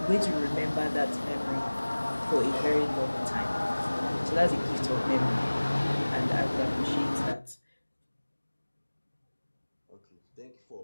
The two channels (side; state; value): both; inverted; correlation -1.00